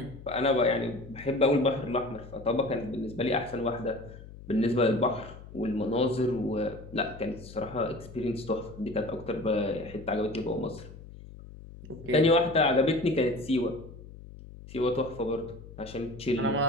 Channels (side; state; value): left; noise; hum, 16 dB below the sound